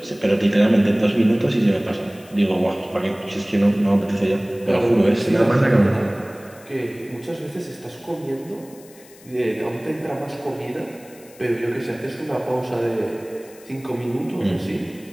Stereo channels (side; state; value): left; noise; hiss, 24 dB below the sound